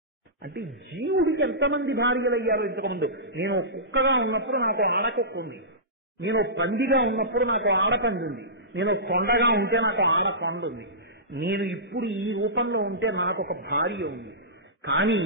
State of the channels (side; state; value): both; normal; correlation -0.20